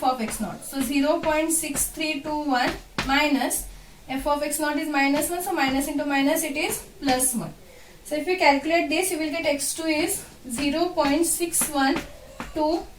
of x0. So 0.6321 minus f of x0 is minus 1. So minus into minus it is plus 1. So if you calculate this, you will get x2 is 0.6127.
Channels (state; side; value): identical; both; correlation 1.00